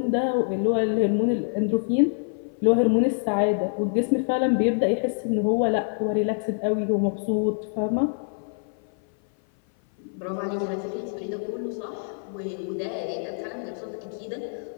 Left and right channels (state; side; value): silent; right; 57 dB below the other